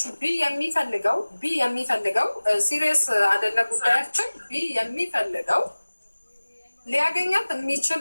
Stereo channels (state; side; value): inverted; both; correlation -1.00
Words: ቢ የሚፈልገው ሲሪየስ አይደለ ጉዳያችን። ቢ የሚፈልገው ሊያገኛት የሚችል